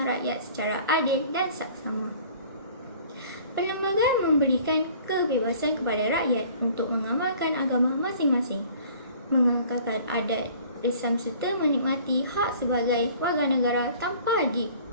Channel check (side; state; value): both; inverted; correlation -0.51